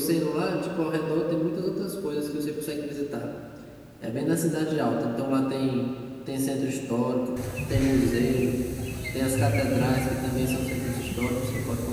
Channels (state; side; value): identical; both; correlation 1.00